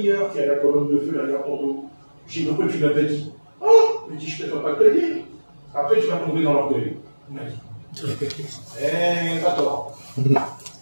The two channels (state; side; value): inverted; both; correlation -1.00